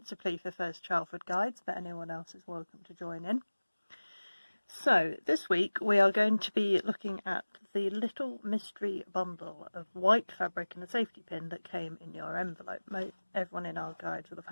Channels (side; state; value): both; inverted; correlation -1.00